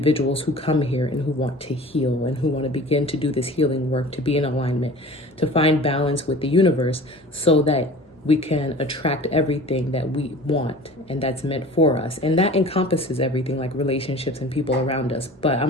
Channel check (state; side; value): normal; both; correlation 0.41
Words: who come here and who want to heal and who want to begin to do this healing work, to be in alignment, to find balance with the universe so that we can attract everything that we want and that's meant for us. And that encompasses everything like relationships and people around us. But